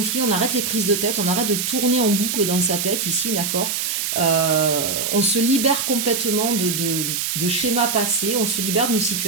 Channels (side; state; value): right; noise; hiss, 1 dB below the sound